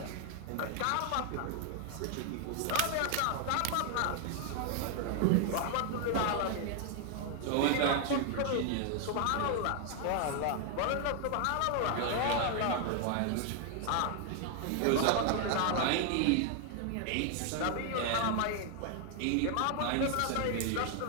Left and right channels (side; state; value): both; different; correlation 0.00